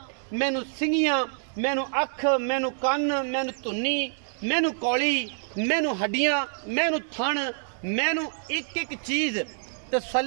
मैनू सिंगियां, मैनू अख, मैनू कन, मैनू धुन्नी, मैनू कौली, मैनू हड्डियां, मैनू थण, मैनू एक एक चीज़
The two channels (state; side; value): silent; left; digital silence